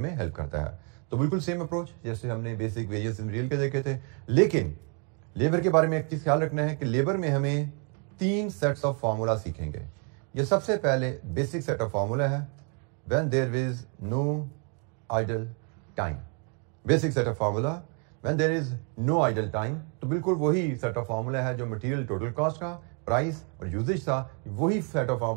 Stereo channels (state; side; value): quieter; left; 38.2 dB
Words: हेल्प करता है। तो बिल्कुल सेम अप्रोच जैसे हमने बेसिक वेरिएंस इन रियल के देखे थे। लेकिन लेबर के बारे में एक चीज ख्याल रखना है कि लेबर में हमें 3 सेट्स ऑफ फार्मूला सीखेंगे। ये सबसे पहले बेसिक सेट ऑफ फार्मूला है when there is no idle time. Basic set of formula when there is no idle time, तो बिल्कुल वही सेट ऑफ फार्मूला है जो मटेरियल टोटल कॉस्ट का, प्राइस और यूजेज था। वही सेट ऑफ